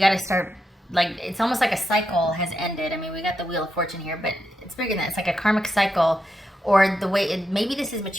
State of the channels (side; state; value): both; normal; correlation 0.85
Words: start, like, it's almost like a cycle has ended. I mean, we got the Wheel of Fortune here, but it's bigger than that. It's like a karmic cycle, or the way maybe this is